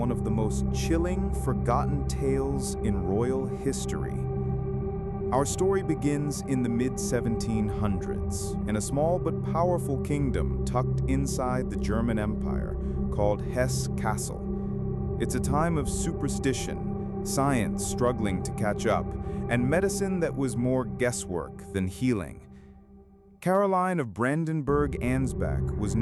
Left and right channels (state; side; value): identical; both; correlation 1.00